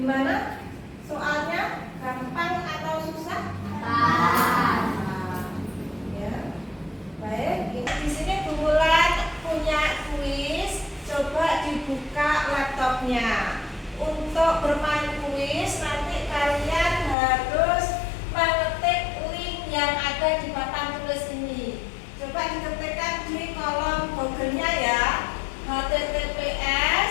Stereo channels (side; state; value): right; drops out; at 17.2 s